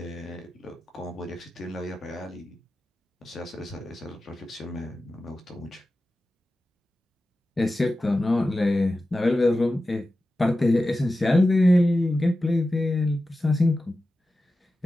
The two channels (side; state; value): both; normal; correlation 0.93